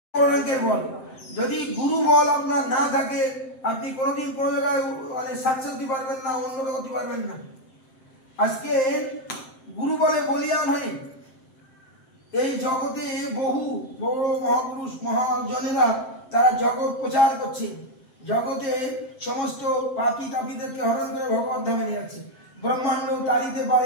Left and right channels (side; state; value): right; late; 7.7 ms